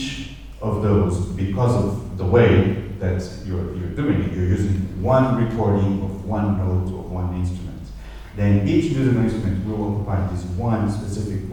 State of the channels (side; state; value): both; identical; correlation 1.00